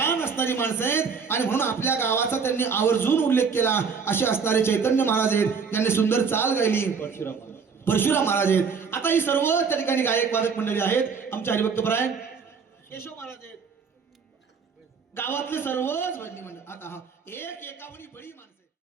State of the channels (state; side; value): quieter; left; 5.7 dB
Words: असणारी माणसं आहेत. आणि म्हणून आपल्या गावाचा त्यांनी आवर्जून उल्लेख केला. असे असणारे चैतन्य महाराज आहेत, त्यांनी सुंदर चाल गायली. परशुराम महाराज आहेत. आता ही सर्व त्या ठिकाणी गायक वादक मंडळी आहेत. आमच्या हरिभक्त परायण केशव महाराज आहेत, गावातले सर्वच भजनी मंडळ. आता हा एकावनी बळी माणसं